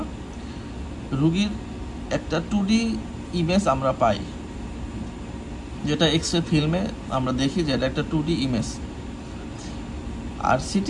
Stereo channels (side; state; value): both; identical; correlation 1.00